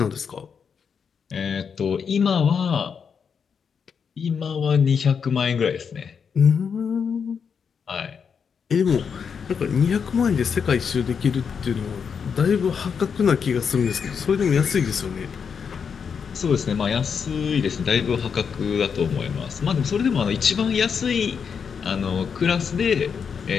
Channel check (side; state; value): right; quieter; 6.5 dB